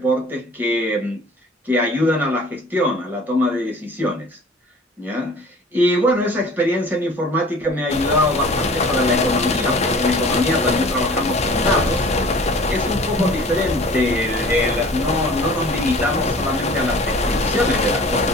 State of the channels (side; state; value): both; normal; correlation 0.46